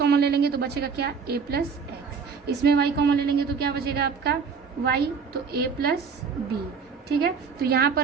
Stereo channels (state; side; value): quieter; left; 5.7 dB